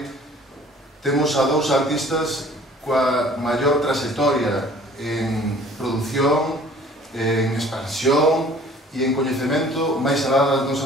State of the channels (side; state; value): both; normal; correlation 0.51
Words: temos a dous artistas coa maior trayectoria en produción, en expansión e en coñecemento máis alá das